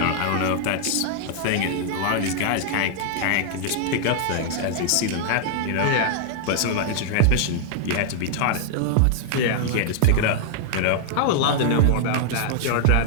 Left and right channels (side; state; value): both; different; correlation 0.00